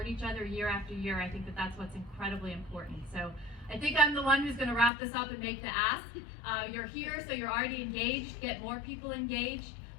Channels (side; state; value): right; drops out; at 4.9 s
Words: each other year after year, I think that that's what's incredibly important. So I think I'm the one who's going to wrap this up and make the ask. You're here, so you're already engaged. Get more people engaged.